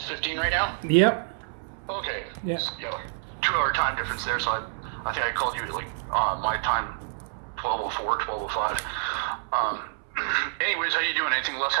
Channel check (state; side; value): silent; left; 60 dB below the other